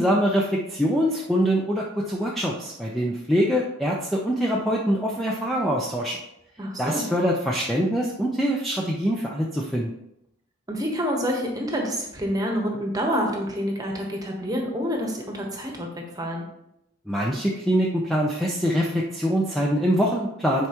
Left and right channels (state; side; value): normal; both; correlation 0.68